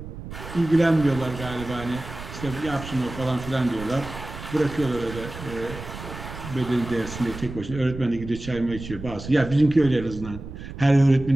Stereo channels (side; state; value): right; noise; rumble, 11 dB below the sound